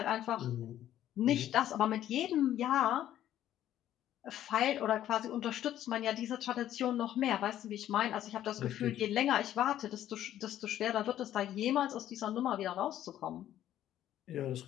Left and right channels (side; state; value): right; quieter; 12.0 dB